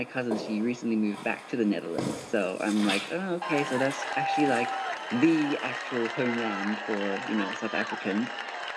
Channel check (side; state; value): both; identical; correlation 1.00